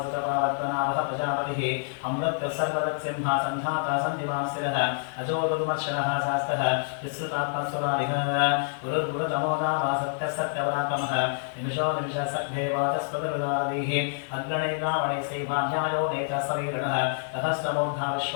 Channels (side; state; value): right; silent; digital silence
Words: प्रजापतिः अमृतः सर्वदत्सिंहासन्धाता सन्धिमान् स्थिरः अजो दुर्मर्शनः शास्तः विश्रुतात्मसुरारिः गुरुर्गुरुतमोदामा सत्यः सत्यपराक्रमः निमिषो निमिषः सद्भेवातस्पदरुदारवीः अग्रणे रावणे श्रीमान्यायो नेता सवीरणः सहस्रमूर्धा